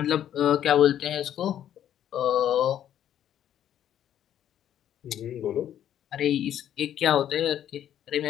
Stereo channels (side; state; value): right; quieter; 10.7 dB